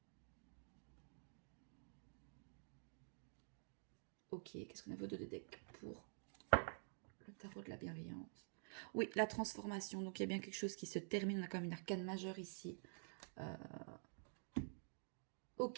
Ok, qu'est-ce qu'on a vos deux decks pour le tarot de la bienveillance? Oui, la transformation. Donc, il y a bien quelque chose qui se termine. On a quand même une arcane majeure ici.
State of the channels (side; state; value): left; silent; digital silence